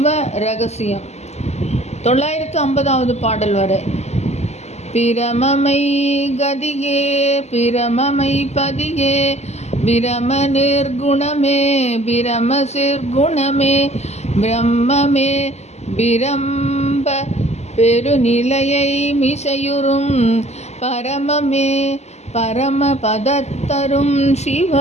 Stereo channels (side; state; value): right; late; 0.32 ms